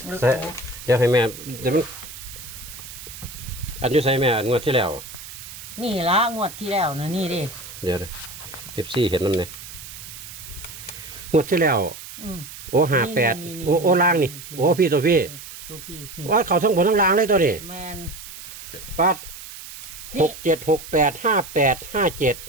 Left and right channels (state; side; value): noise; right; hiss, 13 dB below the sound